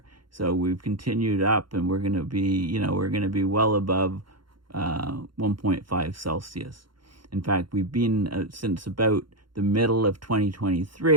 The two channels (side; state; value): left; late; 0.73 ms